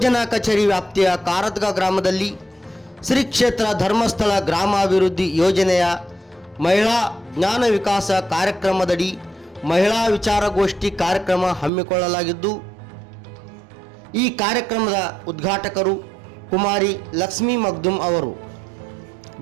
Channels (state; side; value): drops out; left; at 11.7 s